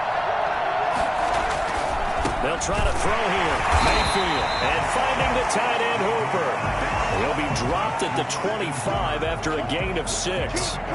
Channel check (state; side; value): identical; both; correlation 1.00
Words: They'll try to throw here. Mayfield, and finding the tight end Hooper. He'll be dropped at the 25 after a gain of 6.